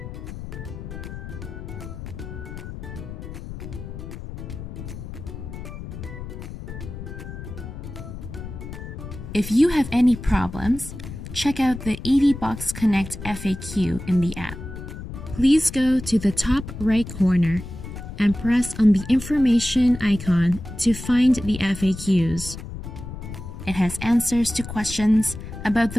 If you have any problems, check out the EVBox Connect FAQ in the app. Please go to the top right corner and press on the information icon to find the FAQs. It has answers to questions about the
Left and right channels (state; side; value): noise; left; rumble, 10 dB below the sound